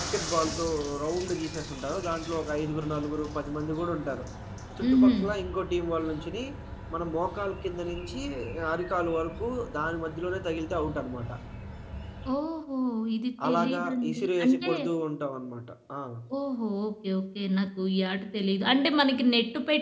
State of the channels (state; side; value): identical; both; correlation 1.00